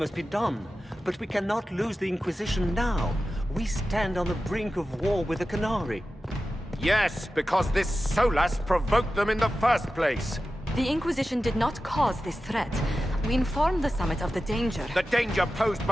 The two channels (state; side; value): normal; both; correlation 0.93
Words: be done, but we cannot lose the Inquisition now. We stand on the brink of war with the Canary. Yes, because this Solas provoked them in the first place. The Inquisition did not cause this threat. We informed the Summit of the danger. The danger posed